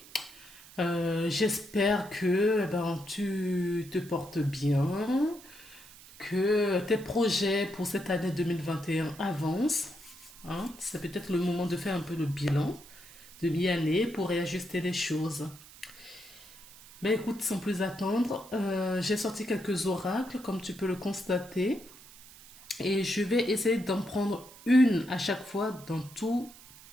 J'espère que tu te portes bien, que tes projets pour cette année 2021 avancent. Hein. C'est peut-être le moment de faire un peu le bilan de mi-année pour réajuster les choses. Ben écoute, sans plus attendre, j'ai sorti quelques oracles, comme tu peux le constater, et je vais essayer d'en prendre une à chaque fois dans tous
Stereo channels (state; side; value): noise; right; hiss, 20 dB below the sound